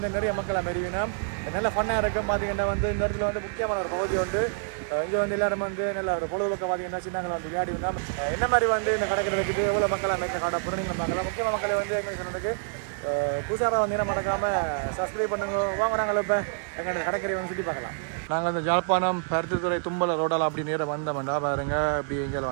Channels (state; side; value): silent; left; digital silence